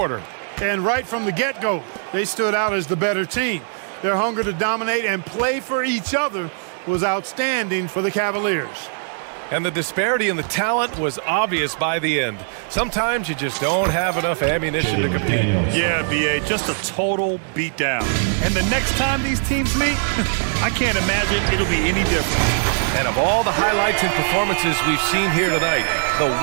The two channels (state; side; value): silent; left; digital silence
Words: And right from the get-go, they stood out as the better team. Their hunger to dominate and play for each other was outstanding for the Cavaliers. And the disparity in the talent was obvious by the end. Sometimes you just don't have enough ammunition to compete. Yeah, B.A., just a total beatdown. And the next time these teams meet, I can't imagine it'll be any different. And of all the highlights and performances we've seen here tonight, the